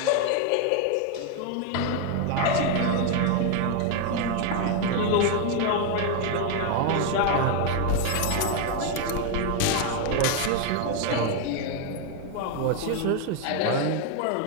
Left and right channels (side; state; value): both; different; correlation 0.01